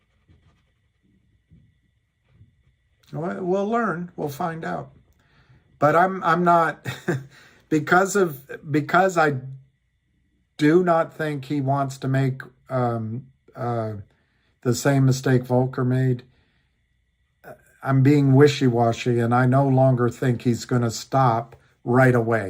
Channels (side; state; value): both; identical; correlation 1.00